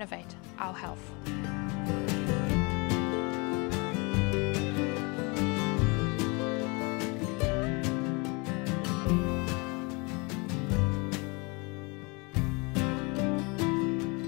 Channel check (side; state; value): right; quieter; 29.1 dB